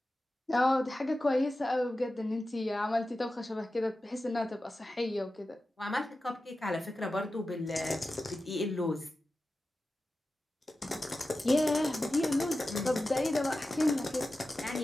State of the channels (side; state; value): both; normal; correlation 0.93